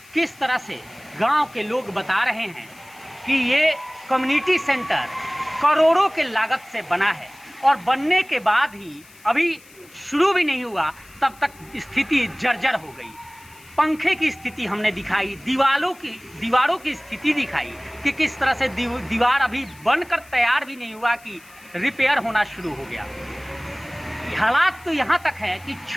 किस तरह से गांव के लोग बता रहे हैं कि ये कम्युनिटी सेंटर करोड़ों के लागत से बना है और बनने के बाद ही अभी शुरू भी नहीं हुआ तब तक स्थिति जर्जर हो गई। पंखे की स्थिति हमने दिखाई, दीवारों की स्थिति दिखाई कि किस तरह से दीवार अभी बनकर तैयार भी नहीं हुआ कि रिपेयर होना शुरू हो गया। हालात तो यहाँ तक है कि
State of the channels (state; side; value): noise; left; hiss, 24 dB below the sound